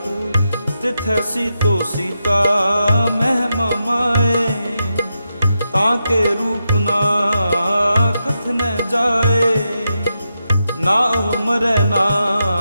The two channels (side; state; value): both; inverted; correlation -0.86